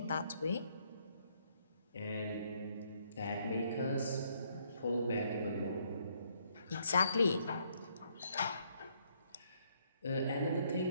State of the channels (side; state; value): both; inverted; correlation -0.70